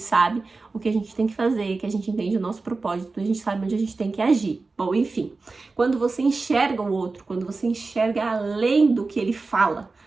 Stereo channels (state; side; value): quieter; left; 3.8 dB